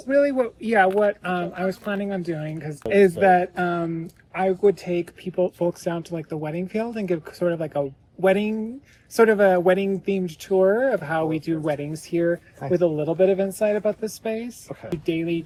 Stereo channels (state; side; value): identical; both; correlation 1.00